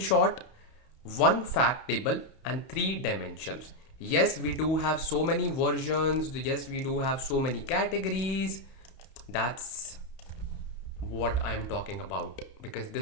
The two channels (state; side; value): late; right; 31 ms